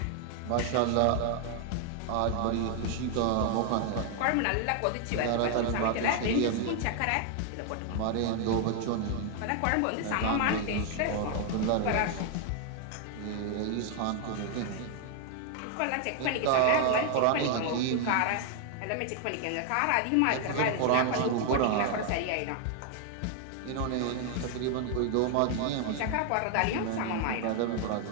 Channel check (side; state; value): both; different; correlation 0.00